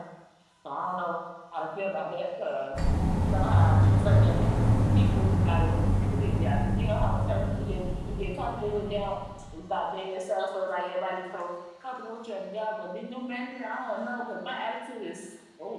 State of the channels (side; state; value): both; identical; correlation 1.00